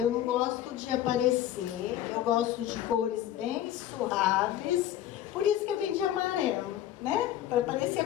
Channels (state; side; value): quieter; right; 12.0 dB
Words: não gosto de aparecer, eu gosto de cores bem suaves. Por isso que eu vim de amarelo, né? Para parecer